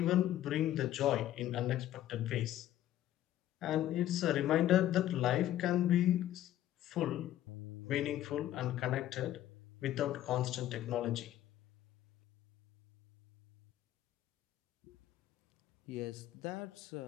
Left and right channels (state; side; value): quieter; right; 12.8 dB